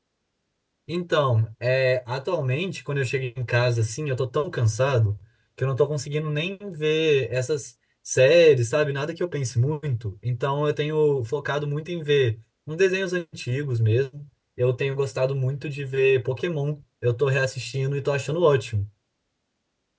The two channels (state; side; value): identical; both; correlation 1.00